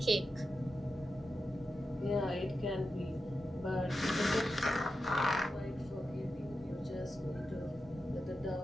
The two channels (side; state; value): both; normal; correlation 0.90